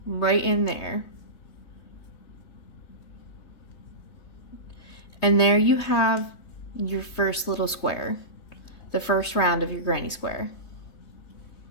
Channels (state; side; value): late; right; 3.2 ms